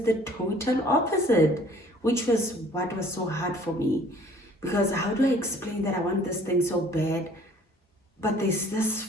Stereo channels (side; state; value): both; normal; correlation 0.54